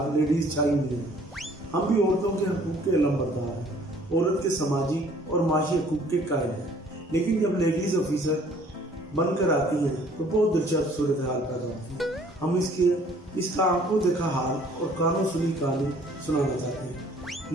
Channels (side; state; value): both; normal; correlation 0.57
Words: लेडीज छाई हुई है। हम भी औरतों के हकूक के अलमबरदार हैं, औरत के समाजी और माशी हकूक के कायल हैं। लेकिन जब लेडीज ऑफिसर बनकर आती हैं तो बहुत दिलचस्प सूरत हाल पैदा होती है। हम इसका आंखों देखा हाल और कानों सुनी कहानी सुनाना चाहते हैं।